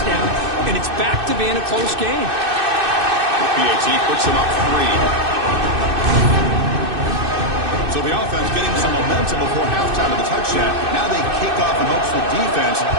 and it's back to being a close game. PAT puts him up 3. So the offense getting some momentum before halftime of the touchdown. Now they kick off in hopes the defense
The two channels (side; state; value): left; late; 2.6 ms